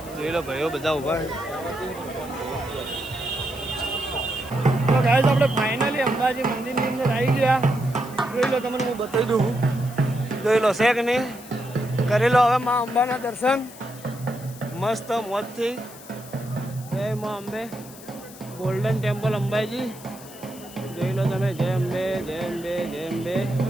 જોઈ લો ભાઈઓ બધા ઊભા છે. તો ગાઈસ આપણે ફાઇનલી અંબાજી મંદિરની અંદર આવી ગયા. જોઈ લો તમને હું બતાવી દઉં. જોઈ લો છે કે નહીં કરી લો હવે મા અંબાના દર્શન મસ્ત મોજથી. જય મા અંબે ગોલ્ડન ટેમ્પલ અંબાજી. જોઈ લો તમે જય અંબે જય અંબે જય અંબે.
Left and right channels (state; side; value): noise; left; hiss, 18 dB below the sound